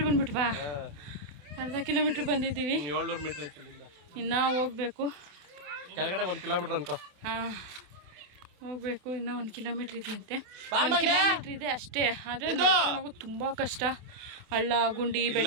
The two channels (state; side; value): late; left; 28 ms